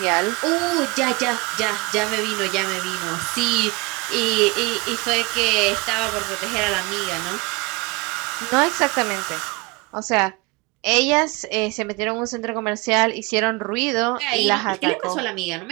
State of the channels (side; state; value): left; quieter; 26.1 dB